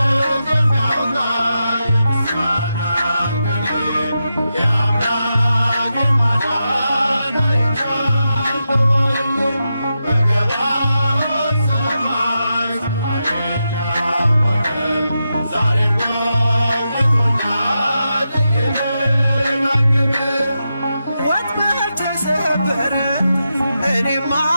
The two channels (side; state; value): both; inverted; correlation -0.88